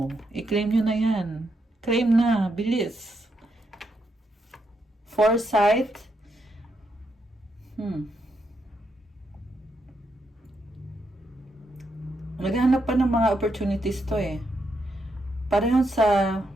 i-claim nyo na yan. Claim na, bilis. Foresight. Naghahanap pa ng mga opportunities to eh. Pareho sa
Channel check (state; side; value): normal; both; correlation 0.80